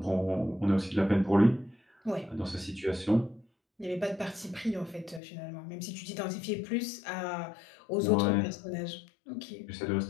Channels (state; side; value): drops out; right; at 5.2 s